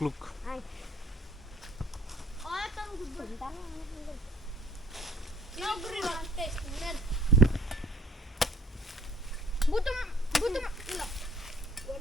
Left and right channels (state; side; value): normal; both; correlation 0.52